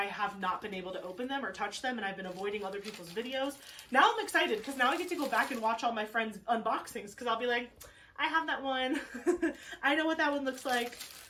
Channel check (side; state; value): both; identical; correlation 1.00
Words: have not been able to open them or touch them, and I've been avoiding other people's videos. Now I'm excited because now I get to go back and watch all my friends' unboxings because I'll be like, I have that one. I know what that one looks like.